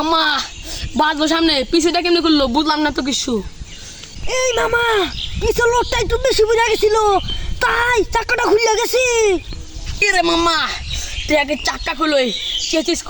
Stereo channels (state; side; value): identical; both; correlation 1.00